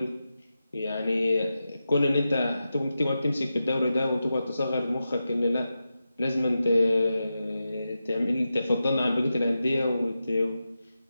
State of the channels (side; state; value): both; inverted; correlation -0.91